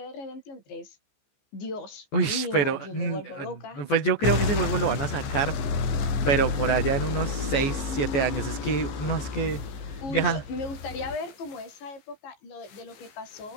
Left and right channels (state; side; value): late; right; 14 ms